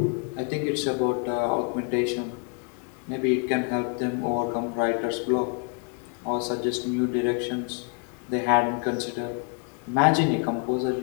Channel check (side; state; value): right; quieter; 35.5 dB